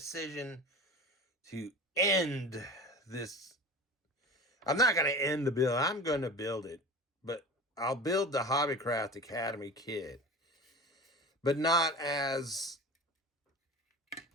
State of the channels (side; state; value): both; normal; correlation 0.34